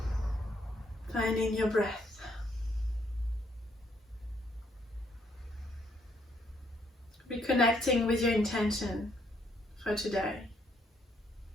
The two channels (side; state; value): both; normal; correlation 0.70